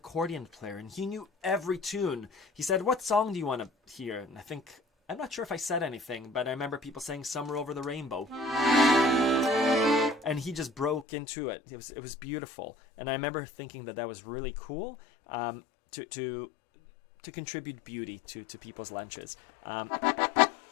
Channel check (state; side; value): drops out; right; at 11.1 s